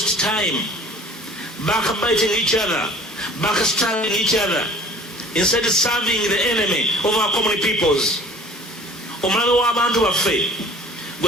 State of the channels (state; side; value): normal; both; correlation 0.48